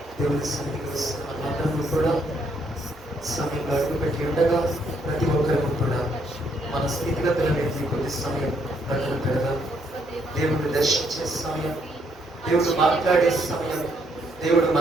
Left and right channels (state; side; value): normal; both; correlation 0.72